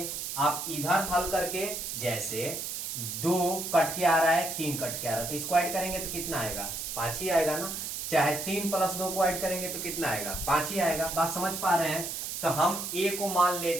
आप इधर हल करके, जैसे 2 कट के आ रहा है, 3 कट के आ रहा है, तो इसको ऐड करेंगे तो कितना आएगा? 5 ही आएगा ना। चाहे 3 + 2 को ऐड करेंगे तो कितना आएगा? 5 ही आएगा। बात समझ पा रहे हैं? तो हम ए को मान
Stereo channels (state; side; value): noise; right; hiss, 5 dB below the sound